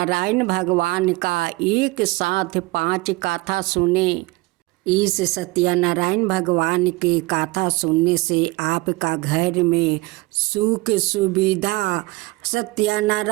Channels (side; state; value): left; quieter; 22.3 dB